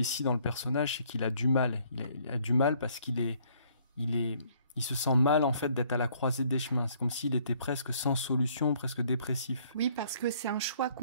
dans le personnage, c'est qu'il a du mal. Il a du mal parce il se sent mal en fait d'être à la croisée des chemins. C'est comme s'il était presque sans solution, presque dépressif. Oui, parce que c'est un choix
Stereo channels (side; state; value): both; inverted; correlation -0.62